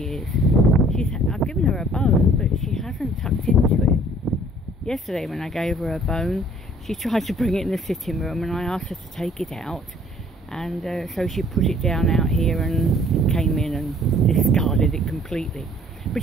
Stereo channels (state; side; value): normal; both; correlation 0.57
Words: is. I've given her a bone, but she hasn't tucked into it. Yesterday when I gave her a bone, she tried to bring it in the sitting room, and I asked her to take it out, and so she put it down out here and came in and discarded it completely.